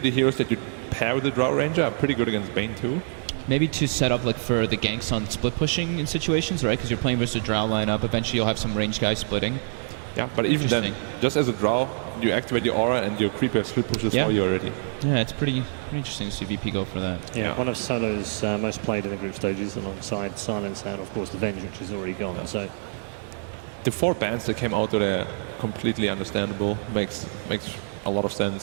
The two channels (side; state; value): left; silent; digital silence